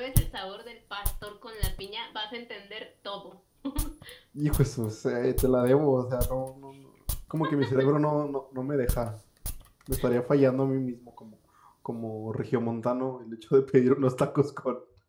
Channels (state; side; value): identical; both; correlation 1.00